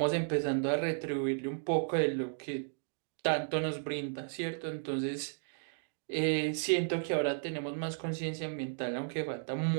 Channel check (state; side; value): silent; left; digital silence